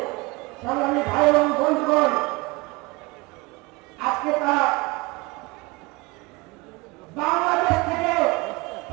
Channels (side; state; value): left; quieter; 24.4 dB